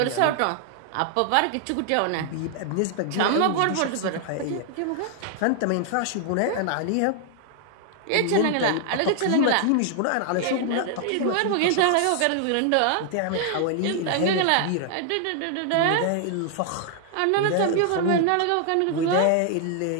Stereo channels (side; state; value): both; different; correlation 0.00